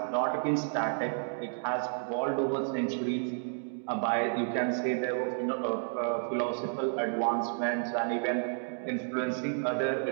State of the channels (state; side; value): silent; left; digital silence